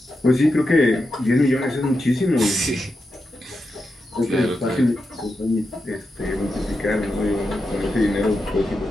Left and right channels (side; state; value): both; normal; correlation 0.88